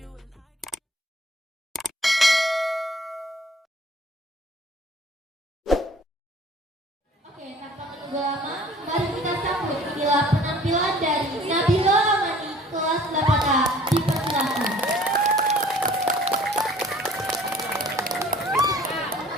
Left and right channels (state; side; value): normal; both; correlation 0.51